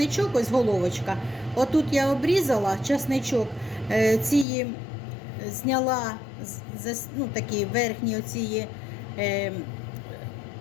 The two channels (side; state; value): right; drops out; at 4.5 s